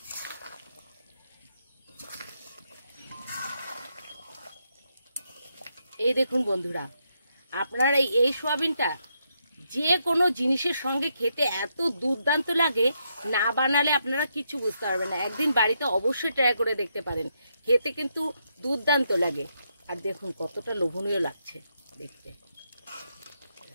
এই দেখুন বন্ধুরা, আপনারা এই সোয়াবিনটা যে কোনো জিনিসের সঙ্গে খেতে এত দুর্দান্ত লাগে, না বানালে আপনারা কিছু বুঝতে পারবেন না। একদিন বাড়িতে অবশ্যই ট্রাই করে দেখতে পারেন, খেতে কিন্তু দুর্দান্ত লাগে। আর দেখুন কতটা লোভনীয় লাগছে দেখতে।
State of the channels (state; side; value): inverted; both; correlation -0.80